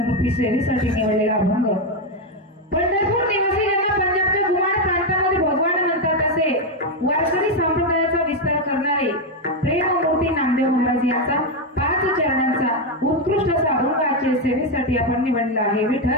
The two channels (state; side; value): normal; both; correlation 0.05